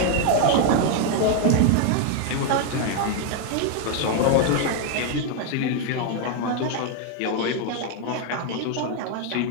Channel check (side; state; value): both; different; correlation 0.01